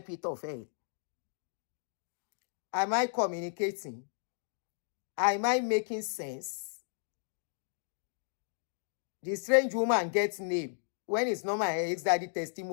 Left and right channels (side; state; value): right; silent; digital silence